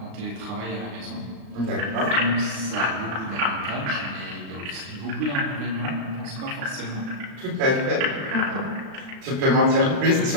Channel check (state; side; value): late; left; 36 ms